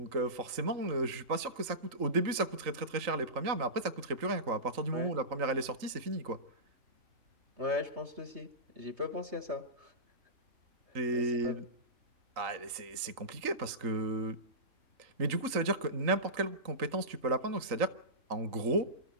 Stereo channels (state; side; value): late; left; 3.8 ms